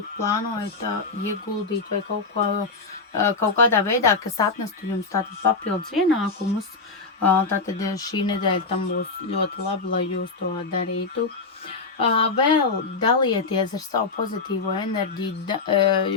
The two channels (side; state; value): right; quieter; 4.1 dB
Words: plānojat ieguldīt vai kaut kādā veidā, kas atnestu jums tātad papildus ienākumus, tātad šī nedēļa tam būs ļoti labi, lai jūs to darītu. Vēl dalieties ar savu pozitīvo enerģiju,